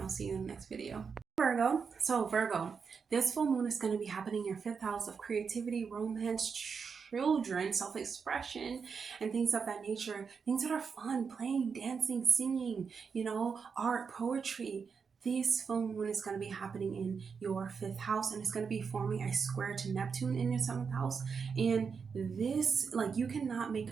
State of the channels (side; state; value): left; quieter; 5.8 dB